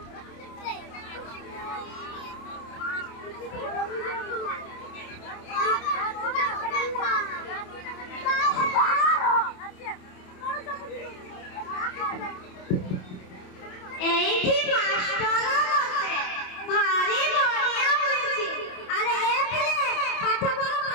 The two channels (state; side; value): late; right; 27 ms